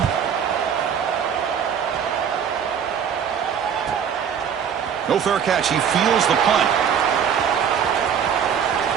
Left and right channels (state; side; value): quieter; left; 7.9 dB